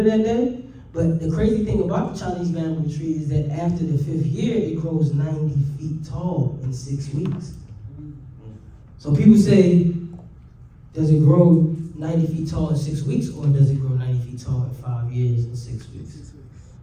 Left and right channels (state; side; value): identical; both; correlation 1.00